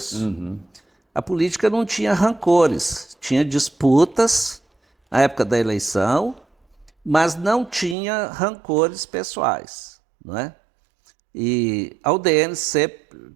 Uhum. A política não tinha rancores, tinha disputas na época da eleição, mas não tinha rancores pessoais, não é? E a UDN sempre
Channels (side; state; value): left; drops out; at 8.0 s